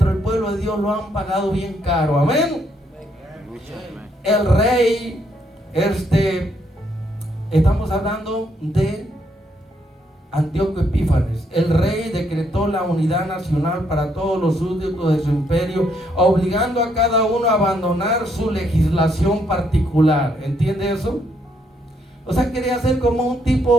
el pueblo de Dios lo han pagado bien caro. Amén. El rey, estamos hablando de Antíoco Epífanes. El rey decretó la unidad nacional para todos los súbditos de su imperio, obligando a cada uno a abandonar su legislación particular. ¿Entiende eso? O sea, quería hacer como un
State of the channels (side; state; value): both; normal; correlation 0.73